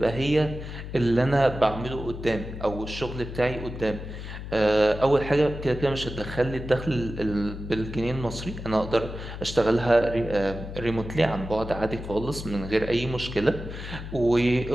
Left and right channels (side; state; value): left; noise; hum, 9 dB below the sound